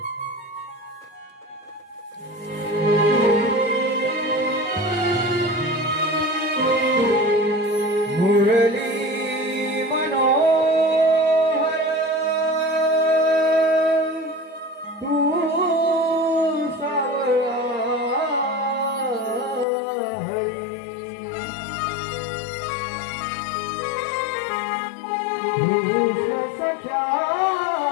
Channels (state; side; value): drops out; right; at 19.7 s